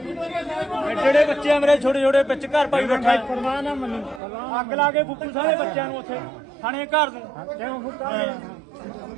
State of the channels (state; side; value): drops out; left; at 4.2 s